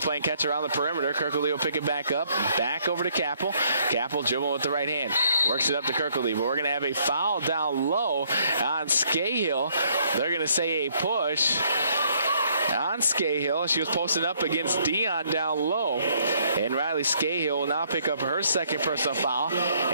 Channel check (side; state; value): both; inverted; correlation -0.67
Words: playing catch around the perimeter, Kirkledy will pick it back up. Back over to Capel. Capel dribbling with the right hand. Works it up to Kirkledy, but we're going to have a foul down low on Scahill. They're going to say a push on Scahill. She was posted up against Dion down low. And Riley Scahill will now pick up her second personal foul.